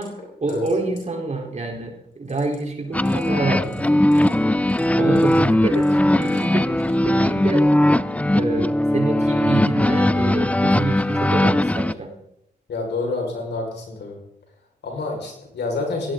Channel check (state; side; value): normal; both; correlation 0.90